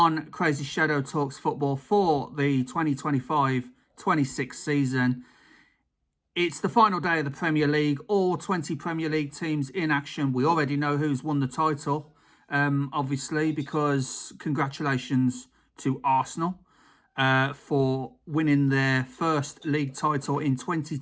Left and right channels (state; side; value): identical; both; correlation 1.00